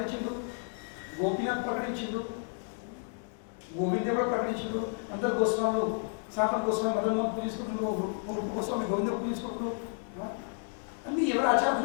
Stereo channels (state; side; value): silent; right; 57 dB below the other